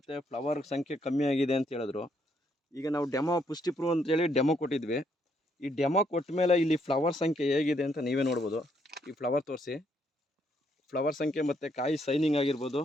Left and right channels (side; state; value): both; normal; correlation 0.73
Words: ಫ್ಲವರ್ ಸಂಖ್ಯೆ ಕಮ್ಮಿ ಆಗಿದೆ ಅಂತ ಹೇಳಿದ್ರು. ಈಗ ನಾವು ಡೆಮೋ ಪುಷ್ಟಿ ಪ್ರೂವ್ ಅಂತೇಳಿ ಡೆಮೋ ಕೊಟ್ಟಿದ್ವಿ. ಈ ಡೆಮೋ ಕೊಟ್ಟ ಮೇಲೆ ಇಲ್ಲಿ ಫ್ಲವರ್ ಸಂಖ್ಯೆ ಹೇಗಿದೆ ಅಂತ ನೀವೇ ನೋಡ್ಬೋದು. ಈ ಫ್ಲವರ್ ತೋರಿಸಿ, ಫ್ಲವರ್ ಸಂಖ್ಯೆ ಮತ್ತು ಕಾಯಿ ಸೈನಿಂಗ್ ಆಗಿರ್ಬೋದು